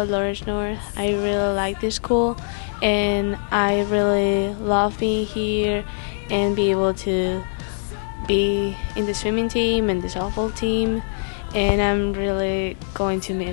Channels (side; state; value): right; silent; digital silence